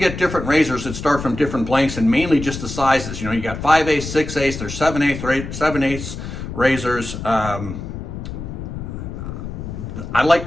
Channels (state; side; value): noise; left; rumble, 8 dB below the sound